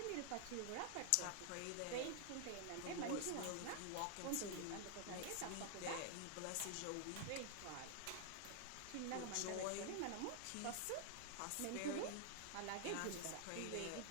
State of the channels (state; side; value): different; both; correlation 0.00